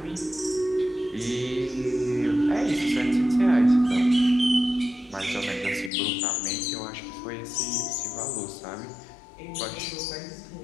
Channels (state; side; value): drops out; right; at 5.9 s